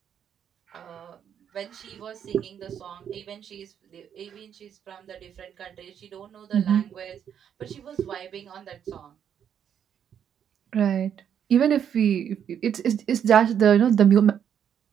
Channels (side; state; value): left; quieter; 8.7 dB